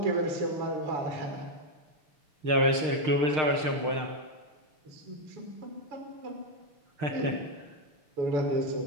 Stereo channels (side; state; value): left; late; 6.5 ms